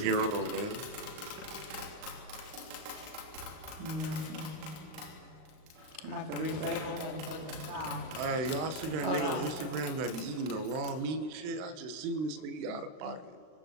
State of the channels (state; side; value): late; left; 38 ms